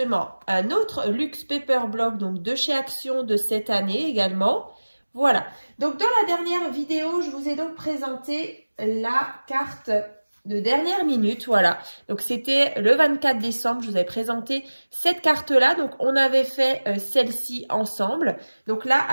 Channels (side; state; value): both; inverted; correlation -1.00